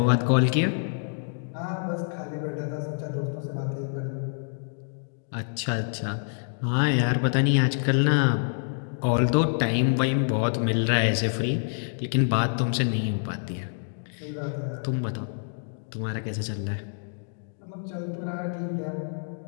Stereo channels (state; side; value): silent; right; digital silence